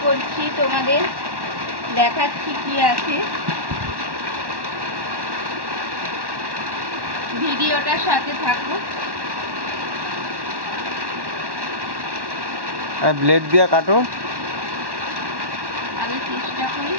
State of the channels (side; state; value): left; late; 1.1 ms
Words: করছি, তোমাদের দেখাচ্ছি কি আছে। ভিডিওটার সাথে থাকো। ব্লেড দিয়ে কাটো। আমি চেষ্টা করি